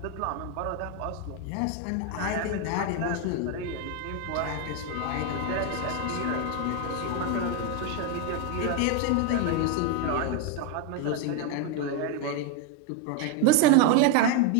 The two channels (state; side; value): different; both; correlation 0.01